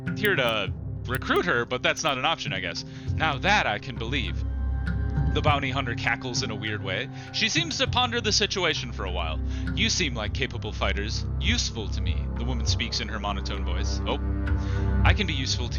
recruit her, but that's not an option, I guess. Now that I can believe. The bounty hunter cackles in a weird way. She seems to ponder the situation for a while. You seem like capable fighters. Useful to me, the woman speaks in her monotone voice. Oh, I can be useful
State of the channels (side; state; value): both; identical; correlation 1.00